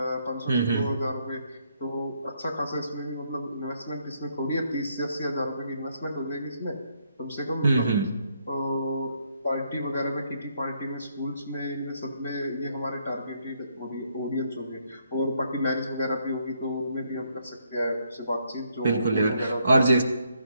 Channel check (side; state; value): both; inverted; correlation -0.73